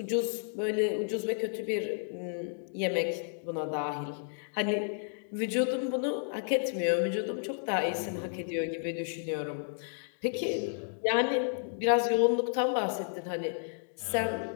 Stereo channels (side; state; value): right; silent; digital silence